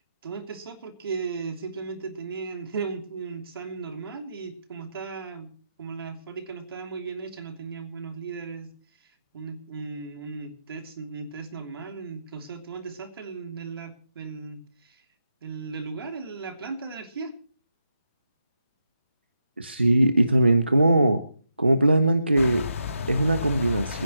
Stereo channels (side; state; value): both; inverted; correlation -0.85